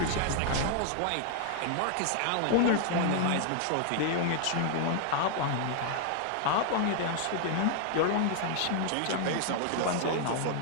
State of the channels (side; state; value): both; different; correlation 0.00